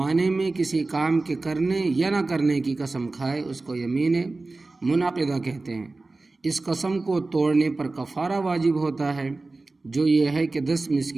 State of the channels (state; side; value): quieter; left; 3.4 dB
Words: میں کسی کام کے کرنے یا نہ کرنے کی قسم کھائے، اس کو یمین منعقدہ کہتے ہیں۔ اس قسم کو توڑنے پر کفارہ واجب ہوتا ہے، جو یہ ہے کہ 10